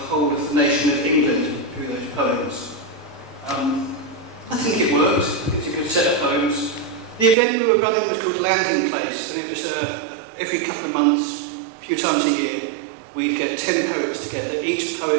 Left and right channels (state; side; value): drops out; left; at 7.4 s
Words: of the nation of England through those poems. I think it worked. It's a good set of poems. The event we were running was called Landing Place, and it was every couple of months, a few times a year, we'd get 10 poets together. Each